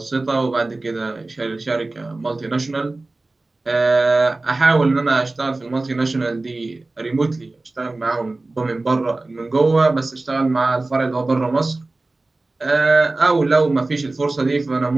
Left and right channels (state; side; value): quieter; left; 3.1 dB